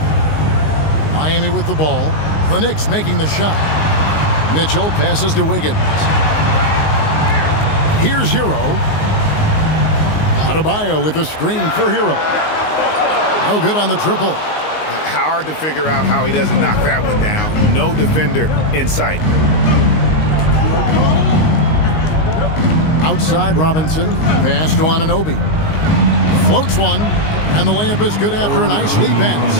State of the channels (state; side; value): late; right; 19 ms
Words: Miami with the ball. The Knicks making the shot. Mitchell passes to Wiggins. Here's Hero. Adebayo with the screen for Hero. No good on the triple. Hard to figure out how he doesn't knock that one down. No defender in sight. Outside Robinson. Pass to Anunoby. Floats one. And the layup is good after a nice lead